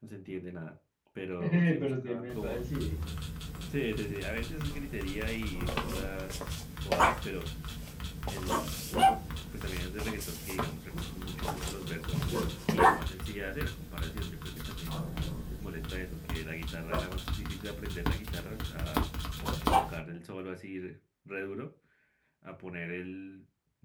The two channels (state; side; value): identical; both; correlation 1.00